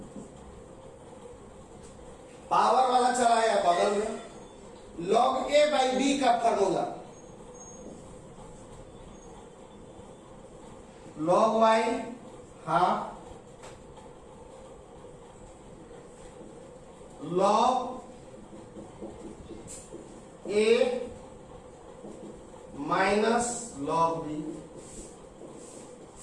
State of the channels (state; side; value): identical; both; correlation 1.00